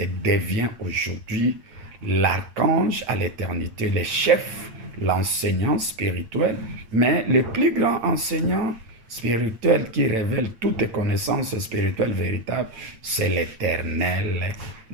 devient aujourd'hui l'archange à l'éternité, le chef, l'enseignant spirituel, mais le plus grand enseignant spirituel qui révèle toutes les connaissances spirituelles véritables, c'est l'Éternel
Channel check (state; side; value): late; left; 8.9 ms